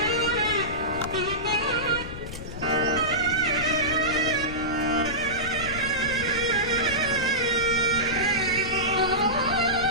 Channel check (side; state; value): left; noise; rumble, 10 dB below the sound